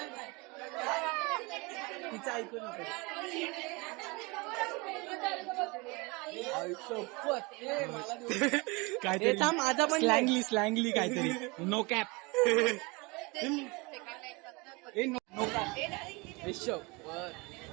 तिचं ऐकू नको. काय माझा पण स्लँगली काहीतरी. No cap.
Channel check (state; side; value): quieter; left; 26.7 dB